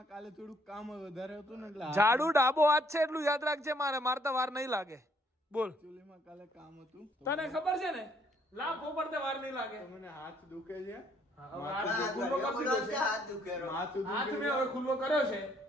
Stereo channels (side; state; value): both; normal; correlation 0.66